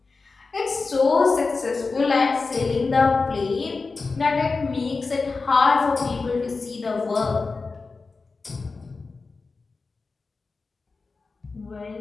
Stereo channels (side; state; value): right; quieter; 4.1 dB